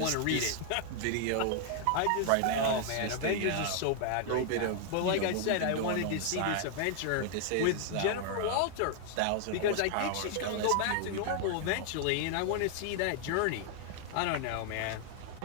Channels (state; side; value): different; both; correlation 0.00